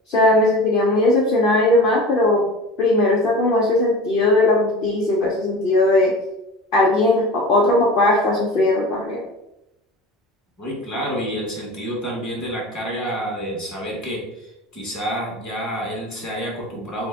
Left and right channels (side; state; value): both; normal; correlation 0.35